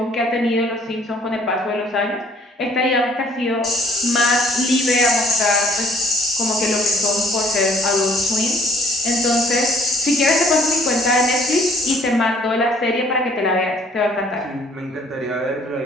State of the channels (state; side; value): normal; both; correlation 0.59